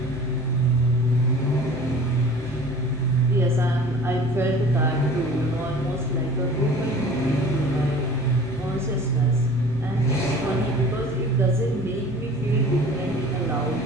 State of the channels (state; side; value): normal; both; correlation 0.44